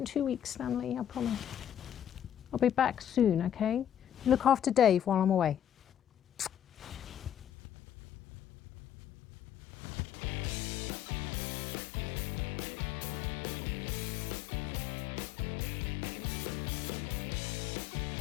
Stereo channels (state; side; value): drops out; right; at 7.5 s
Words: 2 weeks, Stanley, I promise. I'll be back soon, okay? Look after Dave while I'm away.